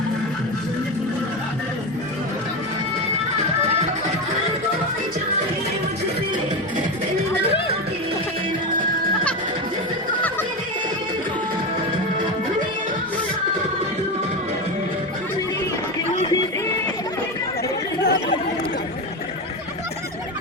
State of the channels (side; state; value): right; noise; rumble, 26 dB below the sound